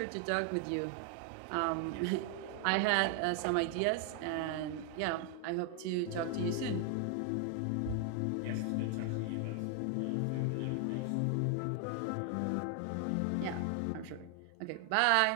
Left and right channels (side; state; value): both; different; correlation 0.00